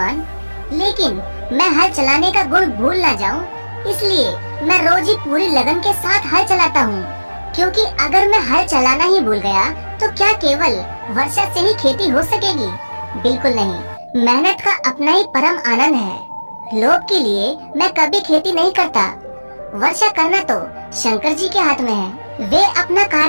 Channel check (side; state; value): both; inverted; correlation -1.00